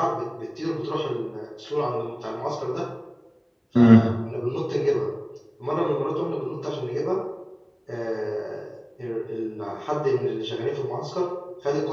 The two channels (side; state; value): both; identical; correlation 1.00